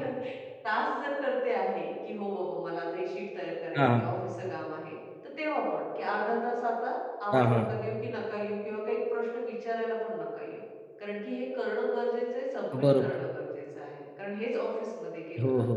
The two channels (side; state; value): both; identical; correlation 1.00